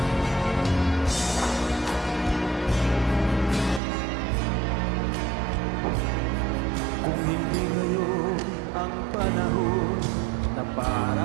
Kung hindi ngayon ang panahon na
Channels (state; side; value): drops out; left; at 3.8 s